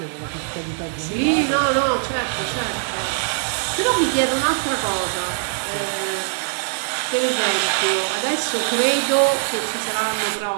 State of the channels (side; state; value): left; silent; digital silence